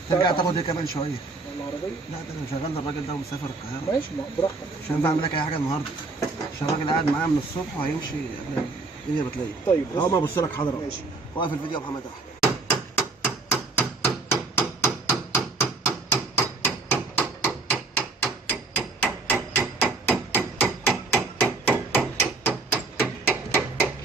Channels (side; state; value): left; quieter; 3.7 dB